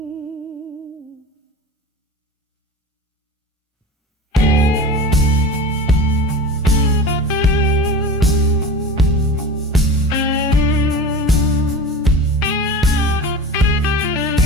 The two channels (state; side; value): normal; both; correlation 0.34